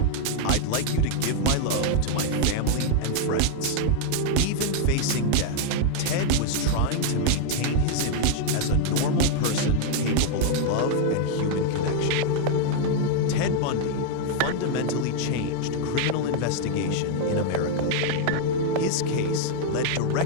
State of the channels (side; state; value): both; different; correlation 0.00